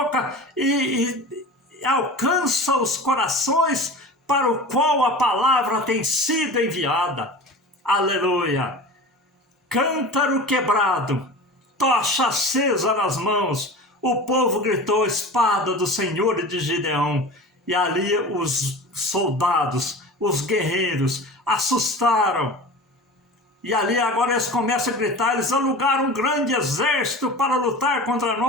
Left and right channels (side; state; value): both; normal; correlation 0.34